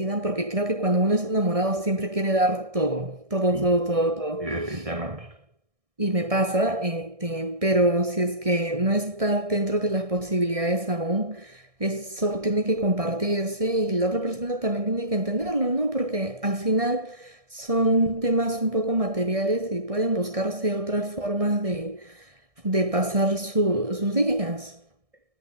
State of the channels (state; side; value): late; left; 1.6 ms